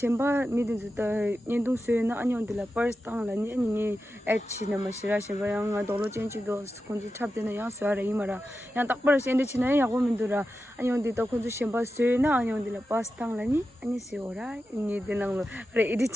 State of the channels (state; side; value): normal; both; correlation 0.91